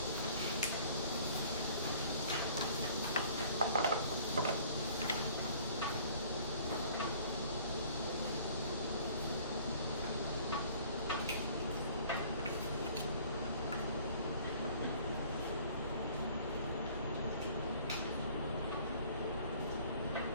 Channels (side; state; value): both; inverted; correlation -0.53